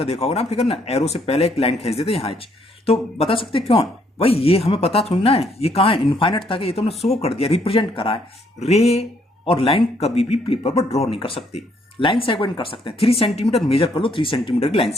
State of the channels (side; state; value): both; normal; correlation 0.69